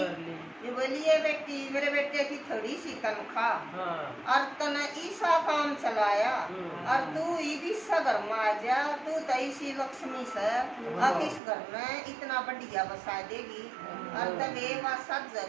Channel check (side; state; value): left; drops out; at 11.4 s